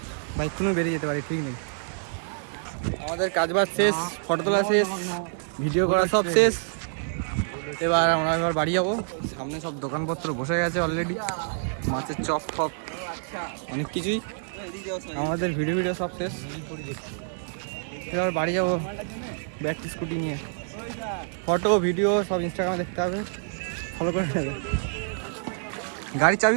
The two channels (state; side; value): silent; left; digital silence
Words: বাইক কোনো বেরিয়ে যেতে পারি, ঠিক নেই। আমাদের কাজবাজ শেষ, ফটো তোলা শেষ, ভিডিও করা সব শেষ। এবার বাড়ি যাবো। সামনে সব দোকানপত্র বসে গেছে অলরেডি, মাছের চপ ফপ অনেক কিছুই। আমাদের ভিডিও সব শেষ। এবার বাড়ি যাবো ব্যাটারি স্কুটি নিয়ে। ফটো ভিডিও সব ইনস্টাগ্রামে দেখতে হবে, ফলো করে নেবে। গাড়ির চাবি